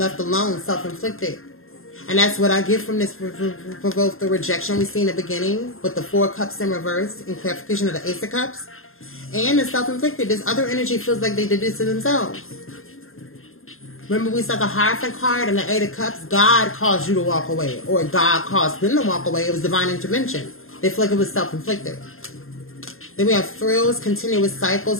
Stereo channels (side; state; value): right; late; 0.61 ms